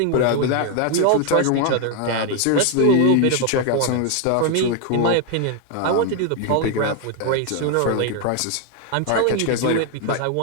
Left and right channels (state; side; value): different; both; correlation 0.01